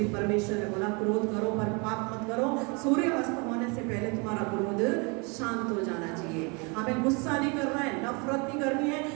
परमेश्वर ने बोला क्रोध करो पर पाप मत करो, सूर्य अस्त होने से पहले तुम्हारा क्रोध शांत हो जाना चाहिए। हमें गुस्सा नहीं करना है, नफरत नहीं करनी है,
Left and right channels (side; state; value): left; quieter; 31.2 dB